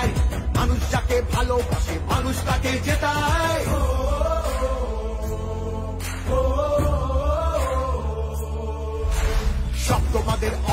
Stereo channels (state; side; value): identical; both; correlation 1.00